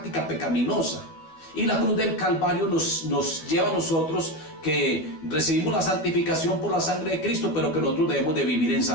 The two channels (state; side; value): late; right; 12 ms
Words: pecaminosa. Y la cruz del Calvario nos lleva a nosotros que recibimos la santificación por la sangre de Cristo, pero que nosotros debemos de vivir en